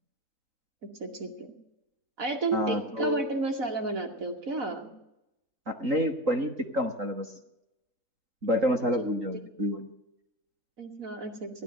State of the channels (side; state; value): left; late; 3.8 ms